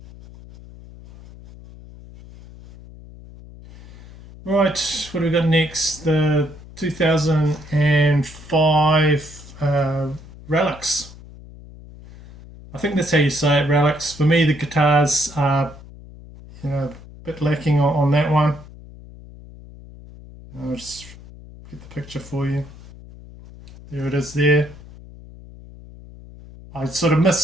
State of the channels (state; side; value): noise; left; hum, 18 dB below the sound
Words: Right, what do we got next? The 2005 Relics. I think that's how you say it, Relics. For me, the guitars are a bit lacking on that one. I'll just get the picture for you. There it is there. I sort of